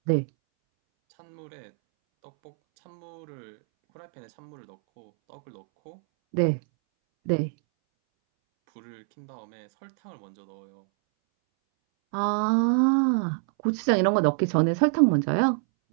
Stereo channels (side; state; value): left; silent; 61 dB below the other